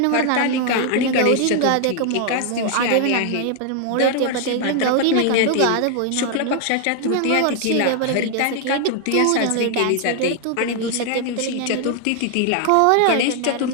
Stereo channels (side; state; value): both; different; correlation 0.00